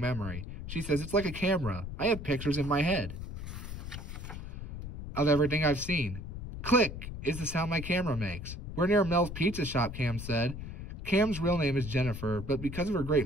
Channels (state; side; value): noise; left; rumble, 8 dB below the sound